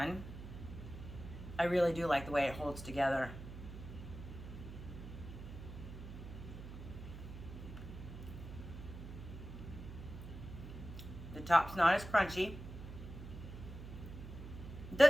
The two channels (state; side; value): noise; right; hum, 11 dB below the sound